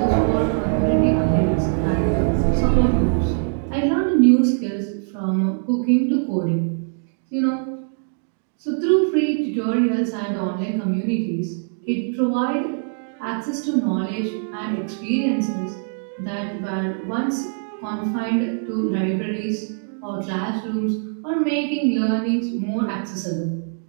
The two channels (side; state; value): left; silent; digital silence